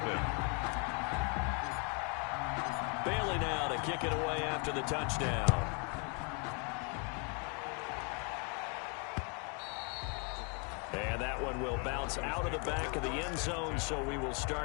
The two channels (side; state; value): right; quieter; 35.8 dB